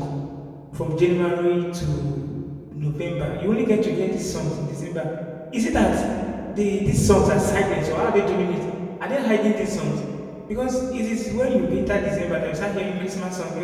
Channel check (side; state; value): both; identical; correlation 1.00